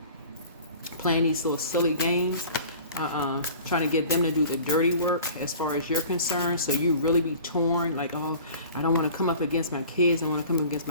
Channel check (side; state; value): both; inverted; correlation -0.44